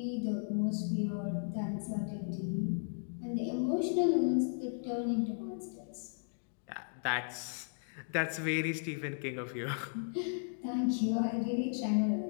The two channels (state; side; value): silent; right; digital silence